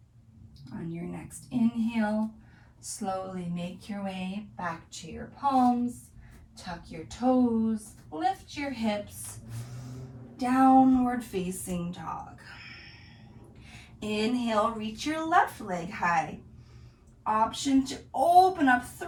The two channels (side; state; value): both; identical; correlation 1.00